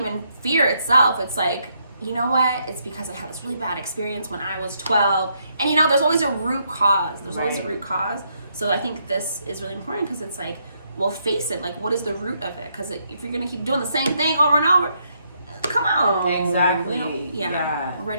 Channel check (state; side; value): inverted; both; correlation -0.75